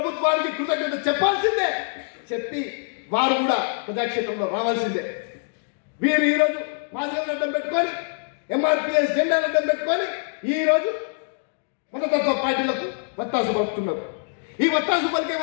కృతజ్ఞత చెప్పాల్సిందే, చెప్పి వారు కూడా ప్రజాక్షేత్రంలో రావాల్సిందే. వీరు ఈ రోజు మాదిగలను అడ్డం పెట్టుకొని, ఎంఆర్పిఎస్ జెండాను అడ్డం పెట్టుకొని ఈ రోజు మతతత్వ పార్టీలకు వత్తాసు పడుతున్నారు. ఈ వత్తాసు పలికే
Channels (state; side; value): silent; right; digital silence